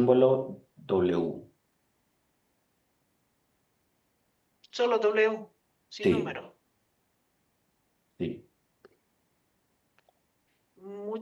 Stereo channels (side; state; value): both; identical; correlation 1.00